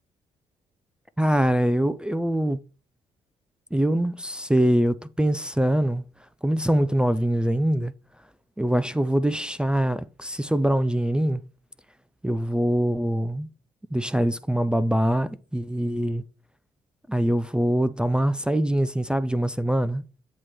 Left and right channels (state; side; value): normal; both; correlation 0.96